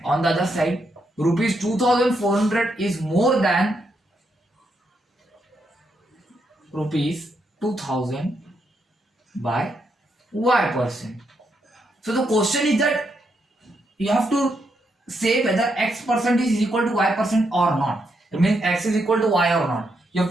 on the other side rupees 2400 is more than rupees 2000 by y percent. So the question is that you have to say whether x percent is equal to y percent or not. It means x is equal to y or not. You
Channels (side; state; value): both; normal; correlation 0.80